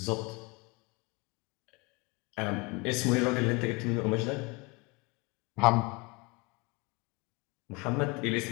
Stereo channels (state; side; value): quieter; right; 26.3 dB